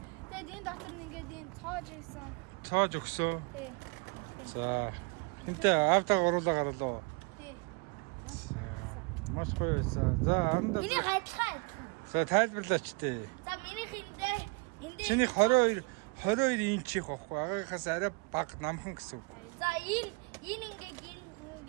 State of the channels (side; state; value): left; quieter; 31.2 dB